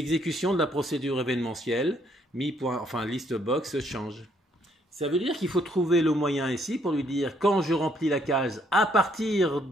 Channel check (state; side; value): normal; both; correlation 0.68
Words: de la procédure événementielle, liste box change. Ça veut dire qu'il faut trouver le moyen ici pour lui dire quand je remplis la case à partir